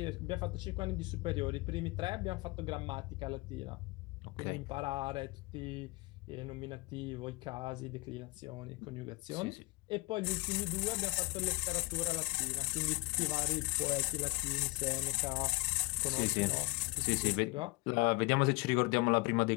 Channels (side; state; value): right; quieter; 25.5 dB